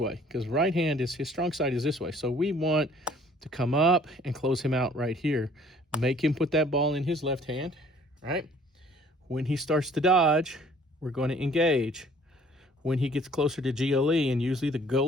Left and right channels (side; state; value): both; normal; correlation 0.56